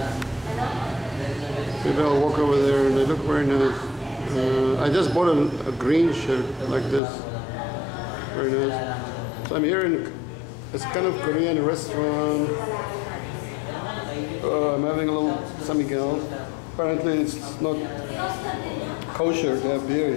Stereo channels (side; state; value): right; drops out; at 7.0 s